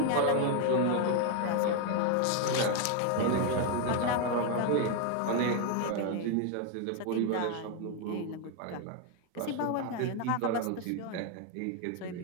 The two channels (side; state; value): both; different; correlation 0.01